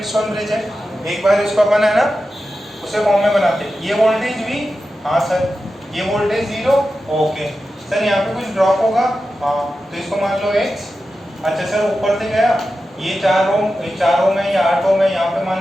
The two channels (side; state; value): both; normal; correlation 0.92